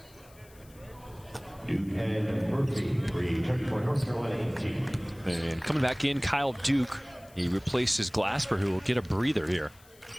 And coming back in, Kyle Duke. He replaces Glasper, who will get a breather here.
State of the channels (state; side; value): noise; left; hiss, 26 dB below the sound